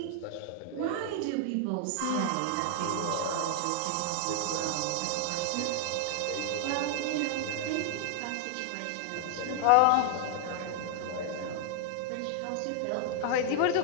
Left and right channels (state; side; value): different; both; correlation 0.00